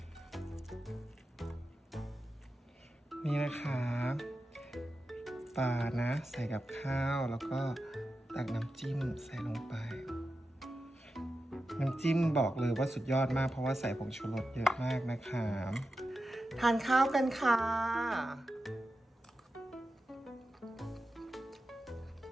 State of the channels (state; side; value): normal; both; correlation 0.91